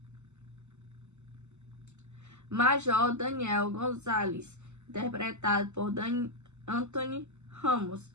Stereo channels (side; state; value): left; late; 0.83 ms